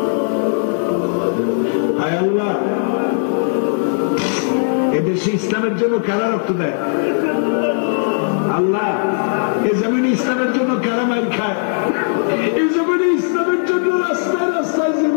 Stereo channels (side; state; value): right; silent; digital silence